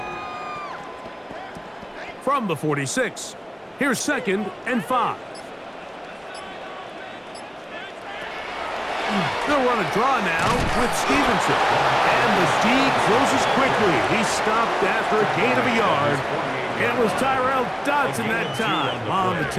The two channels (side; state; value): both; identical; correlation 1.00